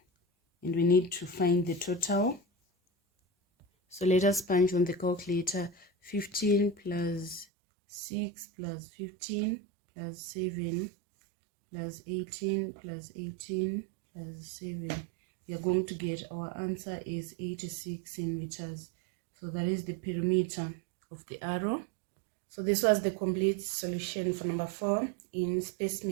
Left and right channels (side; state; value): left; drops out; at 7.5 s